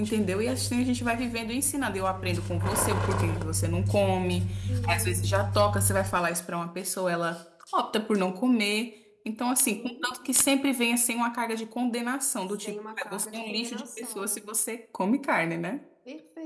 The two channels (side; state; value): both; identical; correlation 1.00